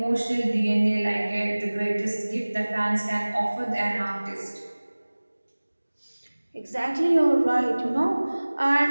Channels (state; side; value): inverted; both; correlation -1.00